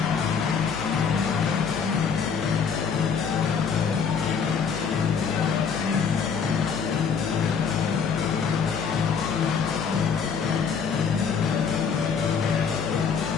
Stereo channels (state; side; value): quieter; right; 6.3 dB